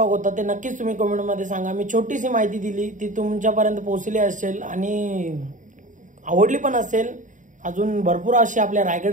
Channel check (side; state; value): left; late; 0.37 ms